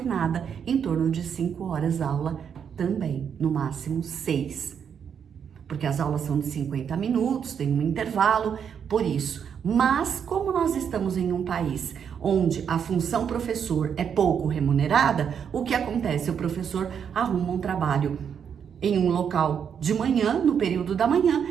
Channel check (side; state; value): left; quieter; 7.6 dB